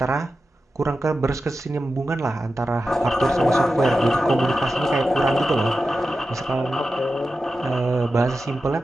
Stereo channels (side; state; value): both; normal; correlation 0.92